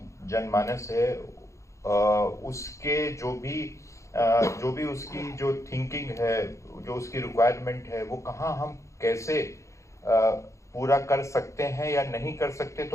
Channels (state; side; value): late; right; 0.15 ms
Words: जनमानस है उसके जो भी उसकी जो थिंकिंग है, जो उसकी रिक्वायरमेंट है, वो कहाँ हम कैसे पूरा कर सकते हैं या नहीं कर सकते,